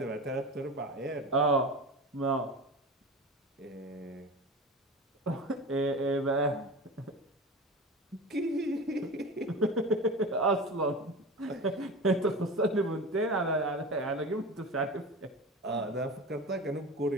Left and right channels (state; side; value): normal; both; correlation 0.30